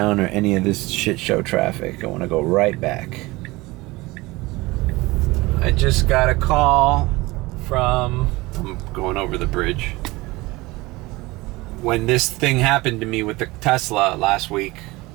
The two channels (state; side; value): quieter; left; 21.5 dB